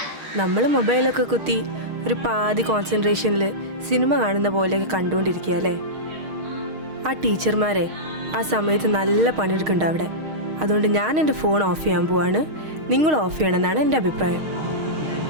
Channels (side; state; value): left; late; 6.4 ms